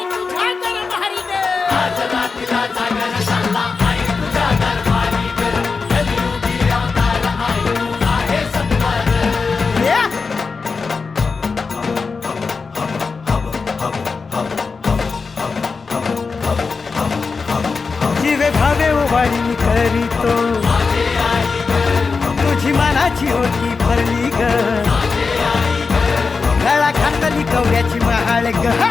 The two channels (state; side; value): quieter; right; 4.7 dB